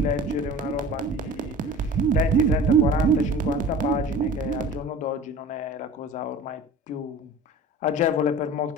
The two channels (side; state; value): both; normal; correlation 0.39